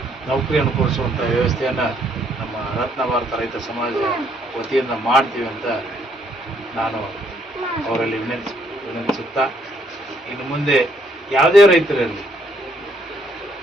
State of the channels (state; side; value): normal; both; correlation 0.69